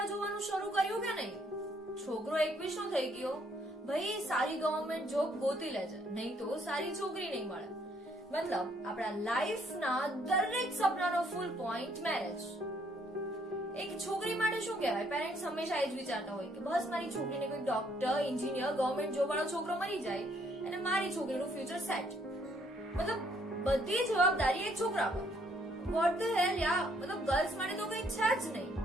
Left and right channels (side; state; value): both; normal; correlation 0.67